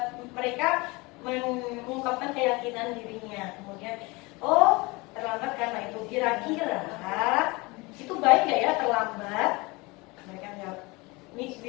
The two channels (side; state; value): right; quieter; 24.7 dB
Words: mereka, mengungkapkan keyakinan dirinya. Kemudian oh terlambat karena itu, kira-kira itu baik nggak ya terlambat? Mereka menjawab,